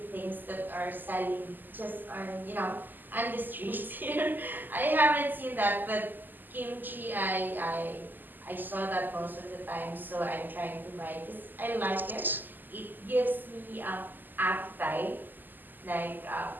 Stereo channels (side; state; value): left; late; 0.088 ms